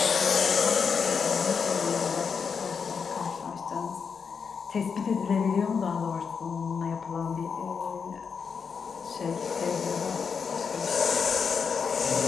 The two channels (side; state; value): right; quieter; 6.0 dB